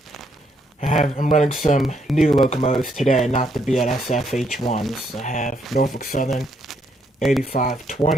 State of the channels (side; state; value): both; normal; correlation 0.73